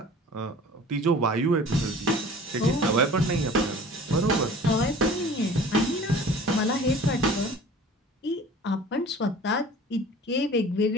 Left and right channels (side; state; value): both; normal; correlation 0.44